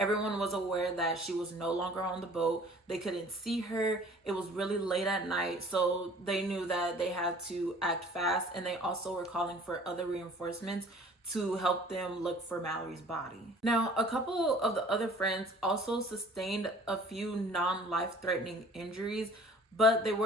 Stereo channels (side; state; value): both; normal; correlation 0.50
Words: was aware that she was no longer on the boat. They couldn't see her. It was really late at night, so they knew that they had to act fast, and they also were calling for other reinforcements to help them look for Mallory's body. Now, a couple of the other friends also sustained a few non-life-threatening injuries, but they